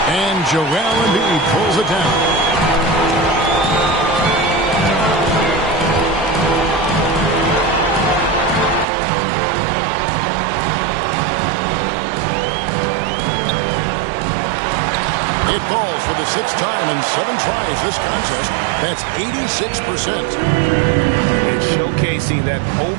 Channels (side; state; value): left; drops out; at 8.8 s